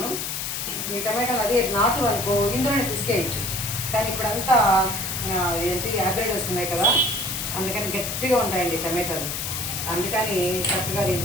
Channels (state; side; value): noise; left; hiss, 3 dB below the sound